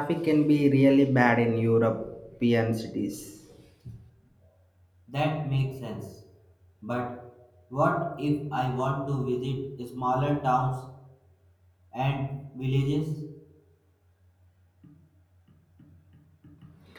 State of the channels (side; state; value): both; identical; correlation 1.00